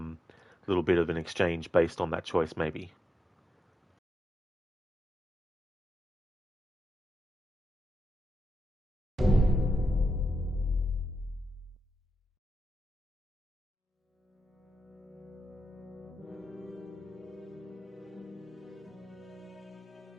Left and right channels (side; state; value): both; normal; correlation 0.88